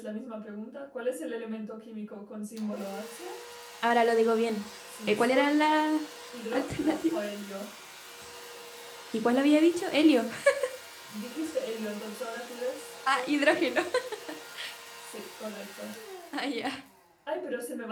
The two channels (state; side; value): identical; both; correlation 1.00